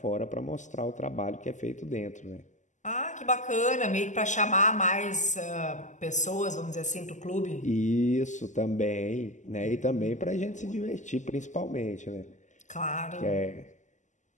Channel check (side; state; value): right; late; 0.35 ms